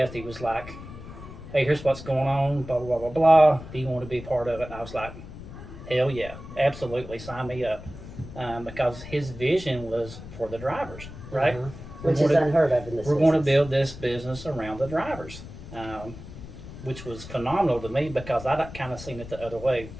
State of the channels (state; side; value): noise; left; rumble, 13 dB below the sound